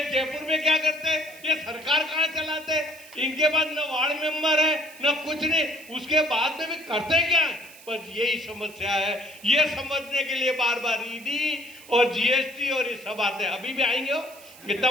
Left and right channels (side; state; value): right; noise; hiss, 20 dB below the sound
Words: जयपुर में क्या करते हैं, ये सरकार कहाँ चलाते हैं, इनके पास न वार्ड मेंबर है न कुछ नहीं, उसके बाद में भी करते क्या है। बस यही समस्या है। ये समझने के लिए बार बार ईडी और जीएसटी और ये सब आते हैं। अभी भी आएंगे हो, इतना